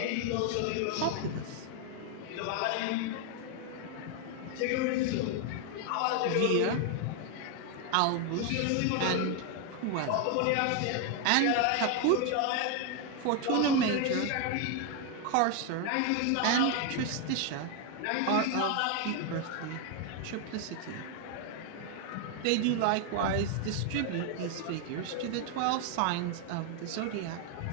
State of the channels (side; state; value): both; different; correlation 0.01